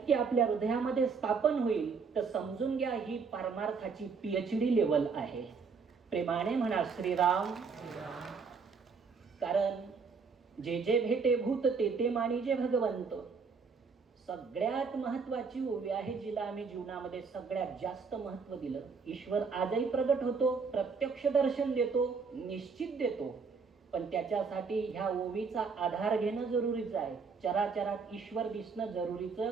आपल्या हृदयामध्ये स्थापन होईल तर समजून घ्या ही परमार्थाची PhD लेवल आहे. प्रेमाने म्हणा श्रीराम. कारण जे जे भेटे भूत ते ते मानिजे भगवंत. सगळ्यात महत्वाची ओवी आहे, जिला आम्ही जीवनामध्ये सगळ्यात जास्त महत्व दिलं. ईश्वर आजही प्रगट होतो, प्रत्यक्ष दर्शन देतो, निश्चित देतो, पण त्याच्यासाठी ह्या ओवीचा आधार घेणं जरुरीचं आहे. चराचरात ईश्वर दिसणं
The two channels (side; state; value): left; quieter; 5.2 dB